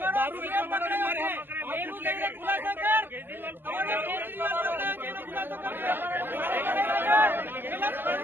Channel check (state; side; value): late; left; 0.099 ms